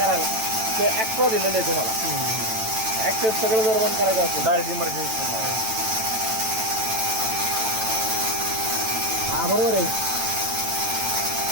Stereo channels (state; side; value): late; left; 9.0 ms